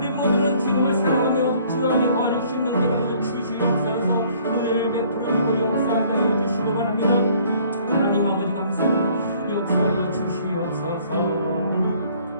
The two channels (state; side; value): inverted; both; correlation -0.59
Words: 모두는 주님을 사랑하며 주 안에 거하는 심령되게 하여 주시옵소서. 은혜를 베풀어주고 역사하게 해주시기 바랍니다. 하나님 아버지 감사합니다. 역사하여 주시옵소서.